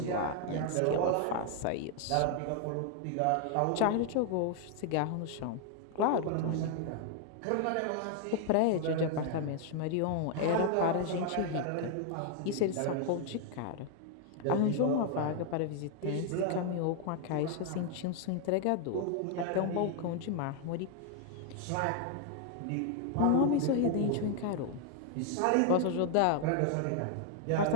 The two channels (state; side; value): different; both; correlation 0.00